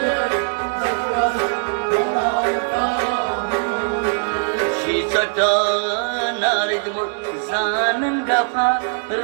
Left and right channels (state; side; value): silent; left; 65 dB below the other